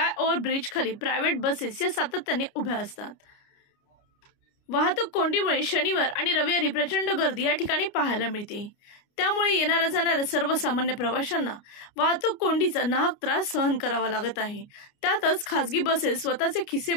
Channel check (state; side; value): late; right; 29 ms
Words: ब्रिज खाली प्रायव्हेट बसेस या सातत्याने उभ्या असतात। वाहतूक कोंडीमुळे शनिवार आणि रविवारी प्रचंड गर्दी या ठिकाणी पाहायला मिळते। त्यामुळे येणाऱ्या जाणाऱ्या सर्वसामान्य प्रवाशांना वाहतूक कोंडीचा नाहक त्रास सहन करावा लागत आहे। त्यातच खासगी बसेस स्वतःचे खिसे